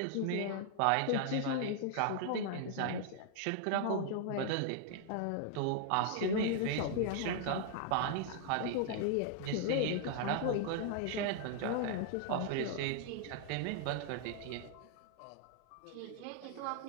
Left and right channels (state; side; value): different; both; correlation 0.00